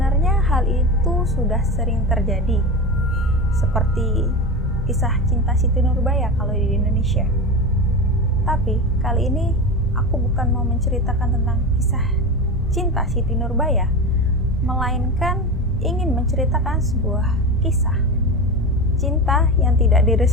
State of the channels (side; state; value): both; normal; correlation 0.24